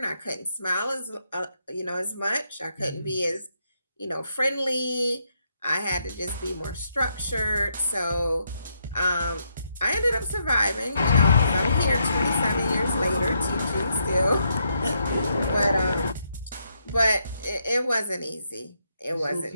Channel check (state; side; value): inverted; both; correlation -0.78